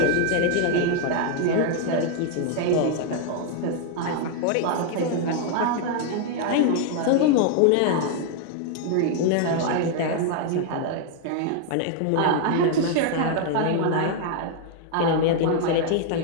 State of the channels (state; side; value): different; both; correlation 0.00